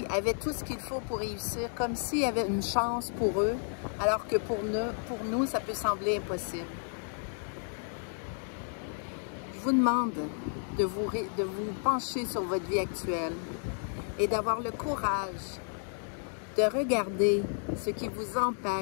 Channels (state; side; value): silent; right; 56 dB below the other